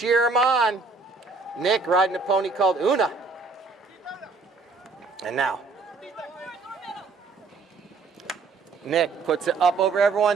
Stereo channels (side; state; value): left; quieter; 4.2 dB